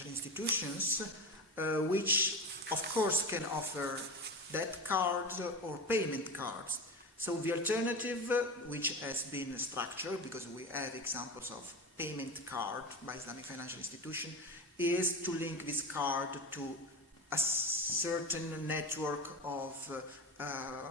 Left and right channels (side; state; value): both; normal; correlation 0.25